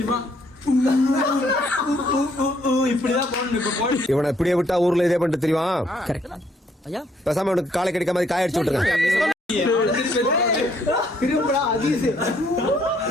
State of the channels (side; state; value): both; normal; correlation 0.68